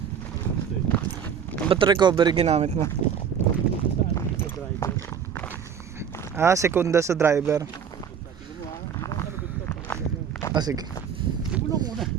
Ba't recovery ginamit mo? Saan sa driver? Ah, sekunda sa driver. Sabi mo ha, Ah, sige. hindi mo lang muna.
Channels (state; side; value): quieter; left; 7.6 dB